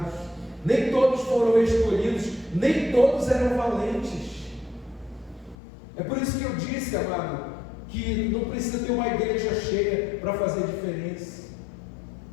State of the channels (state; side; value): drops out; right; at 5.6 s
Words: nem todos foram escolhidos, nem todos eram valentes. É por isso que eu disse, amado, que não precisa ter uma igreja cheia para fazer diferença.